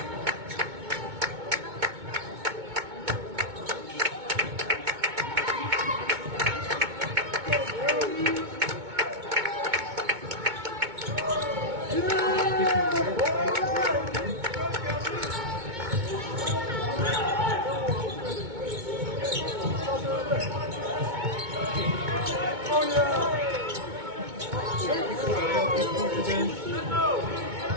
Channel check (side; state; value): left; late; 2.2 ms